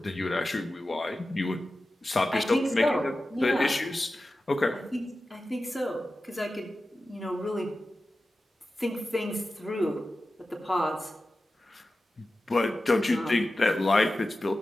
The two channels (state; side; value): normal; both; correlation 0.94